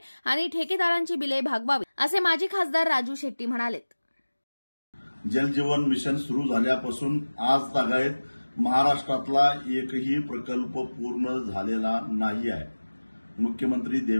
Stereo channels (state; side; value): inverted; both; correlation -1.00